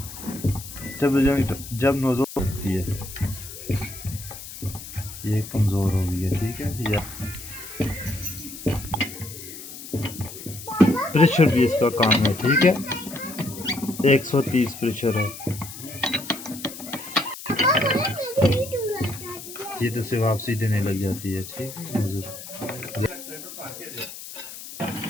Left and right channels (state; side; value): noise; left; hiss, 12 dB below the sound